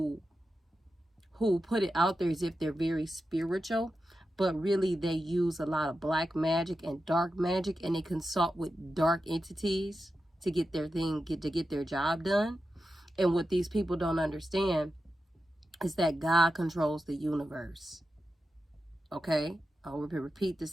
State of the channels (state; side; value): normal; both; correlation 0.91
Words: put it out there as if they're very spiritual, but really they use a lot of black magic and dark magic, and they consult with dark entities to get their get their job done. And what these people don't understand is that God controls the universe. Okay? I'll repeat